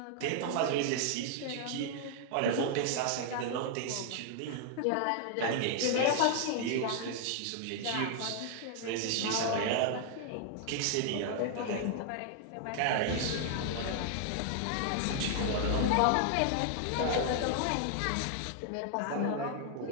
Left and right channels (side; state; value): both; different; correlation 0.00